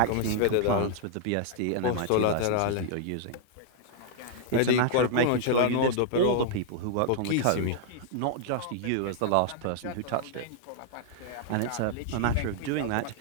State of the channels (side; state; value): both; different; correlation -0.01